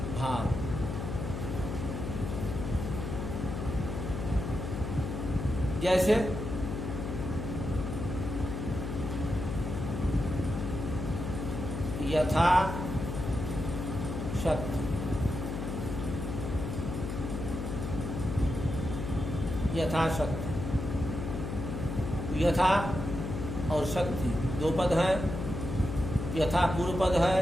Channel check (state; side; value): noise; left; hum, 4 dB below the sound